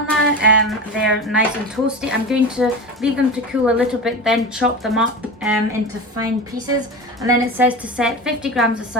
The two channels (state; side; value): normal; both; correlation 0.27